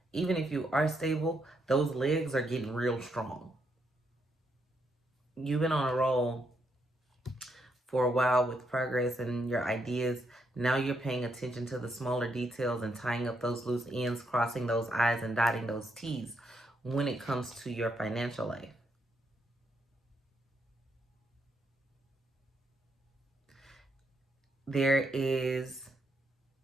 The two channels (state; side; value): normal; both; correlation 0.78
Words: Even if you are stable, those legs are getting real strong. You've been on a roll for a while with progress and your ideas. Now you're paying attention to the smaller details and tying up those loose ends, crossing those I's and dotting those T's when it comes to your financial life. There is